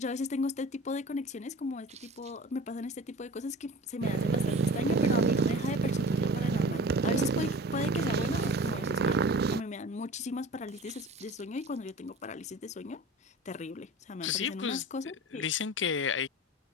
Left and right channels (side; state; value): both; normal; correlation 0.38